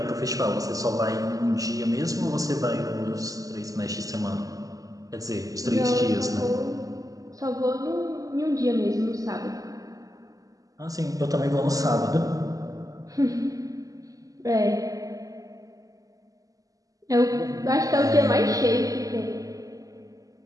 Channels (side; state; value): left; late; 0.17 ms